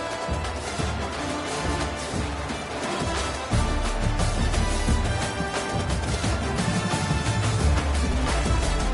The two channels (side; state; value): both; identical; correlation 1.00